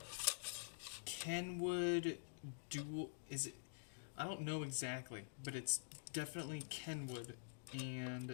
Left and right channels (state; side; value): silent; right; digital silence